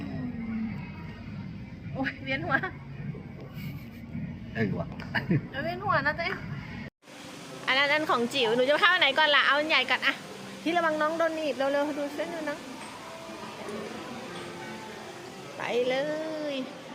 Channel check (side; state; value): both; identical; correlation 1.00